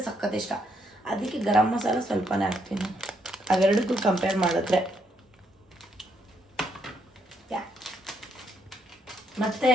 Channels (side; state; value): both; normal; correlation 0.75